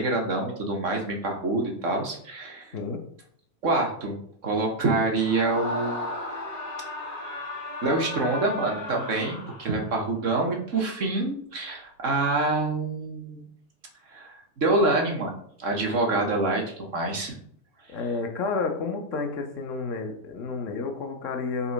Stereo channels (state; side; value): late; left; 3.6 ms